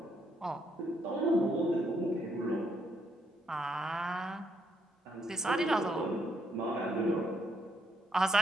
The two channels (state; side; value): normal; both; correlation 0.74